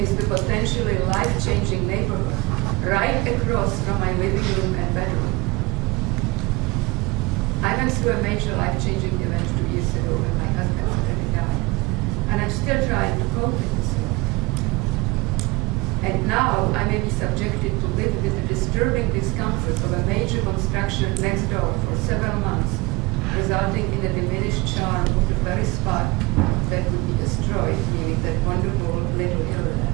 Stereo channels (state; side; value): quieter; left; 23.5 dB